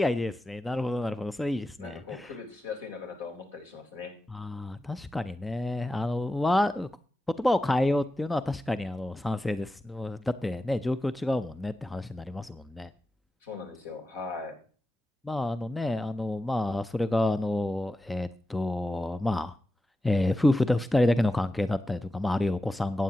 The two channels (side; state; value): both; normal; correlation 0.93